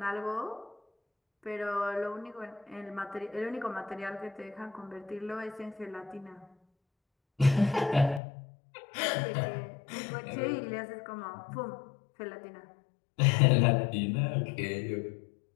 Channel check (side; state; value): right; drops out; at 8.2 s